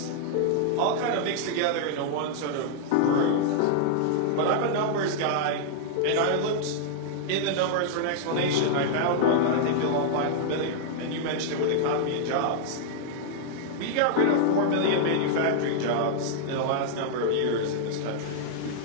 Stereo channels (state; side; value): different; both; correlation -0.01